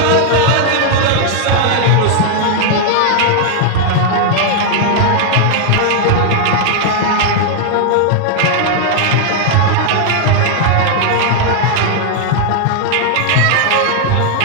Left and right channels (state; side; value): different; both; correlation 0.00